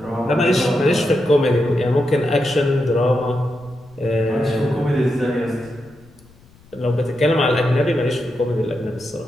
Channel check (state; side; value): noise; left; rumble, 27 dB below the sound